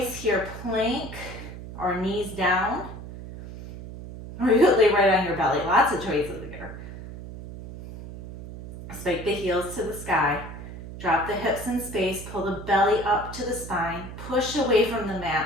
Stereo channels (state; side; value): noise; right; hum, 12 dB below the sound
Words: here, plank or knees down. Or you could lay right on your belly. Lots of choices here. Spike the heels to the sky. Drop the hips in space. Pull the belly up to the spine. Push away from the